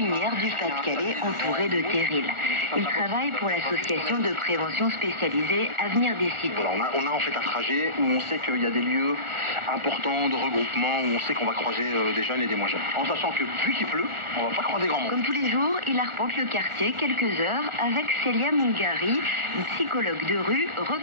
du Pas-de-Calais entourée de terrils. Il travaille pour l'association de prévention spécialisée Avenir des Cités. Voilà, on a en fait un trajet où on sait qu'il y a des lieux importants de regroupement, où on sait qu'on va croiser des jeunes et des moins jeunes. En sachant que vu qu'il pleut, on va pas croiser grand monde. Comme tous les jours, il arpente le quartier quelques heures avec Célia Mungari, une psychologue de rue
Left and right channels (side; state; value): left; late; 1.4 ms